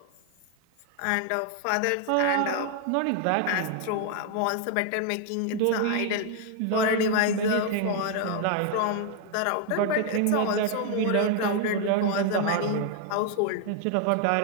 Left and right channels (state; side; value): different; both; correlation 0.00